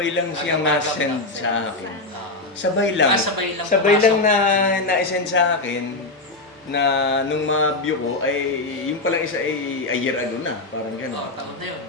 lang siya ma-send sa akin. Ah, Sabay lang. sabay lang na na-send sa akin na nung ma-view ko ay yung palang isa ay a year ago na, parang gano'n. taon na yun.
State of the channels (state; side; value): quieter; right; 3.0 dB